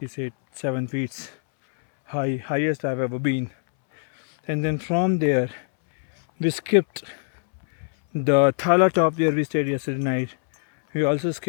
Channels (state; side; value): silent; right; 63 dB below the other